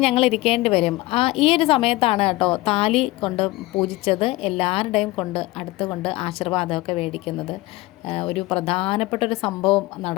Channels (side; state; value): right; quieter; 19.5 dB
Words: ഞങ്ങൾ ഇരിക്കേണ്ടി വരും. ഈ ഒരു സമയത്താണ് കേട്ടോ താലി കൊണ്ട് പൂജിച്ചത് എല്ലാവരുടെയും അടുത്തുകൊണ്ട് ആശീർവാദമൊക്കെ മേടിക്കുന്നത്. ഒരു പ്രധാനപ്പെട്ടൊരു സംഭവം